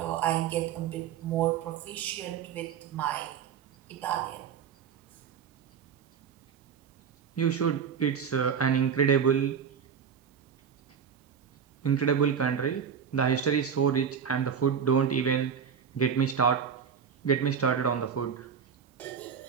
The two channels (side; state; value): left; quieter; 7.3 dB